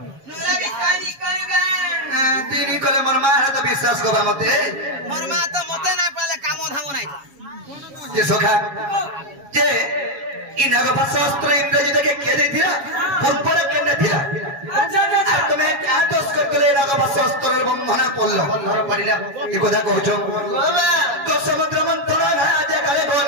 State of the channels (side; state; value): left; late; 7.2 ms